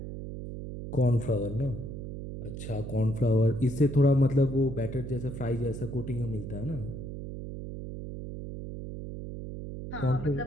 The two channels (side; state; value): right; noise; hum, 8 dB below the sound